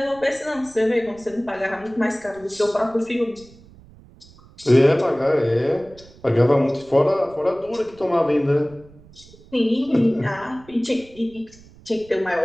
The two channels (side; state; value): right; noise; rumble, 24 dB below the sound